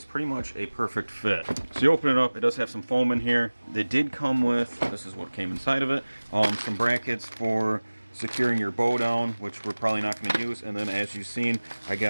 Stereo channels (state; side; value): inverted; both; correlation -1.00